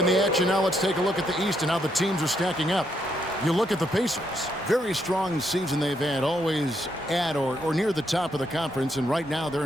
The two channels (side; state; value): both; normal; correlation 0.76